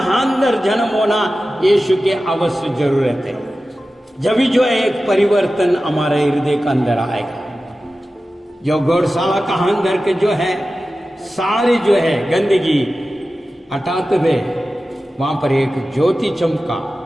अंदर जन्म होना यीशु के अवश्य जरूरत है। जब भी जो है एक परिवर्तन हमारे हृदय के अंदर आएगा। जो गौरशाला का अंदर के जो है सारी जो है गंदगी हटाते हुए वहां पर एक ज्योति चमका,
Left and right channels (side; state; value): both; normal; correlation 0.94